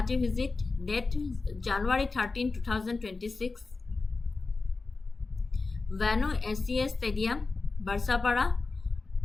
visit date January 13, 2026 Venue SCA Stadium, Barsapara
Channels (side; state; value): right; quieter; 3.9 dB